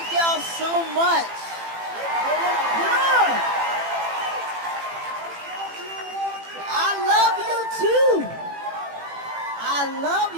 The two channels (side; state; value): left; late; 18 ms